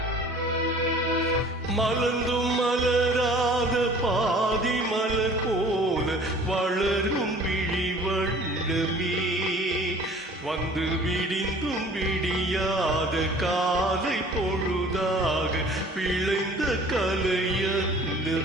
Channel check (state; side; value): normal; both; correlation 0.49